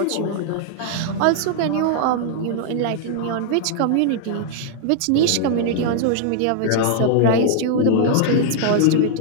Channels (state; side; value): different; both; correlation -0.01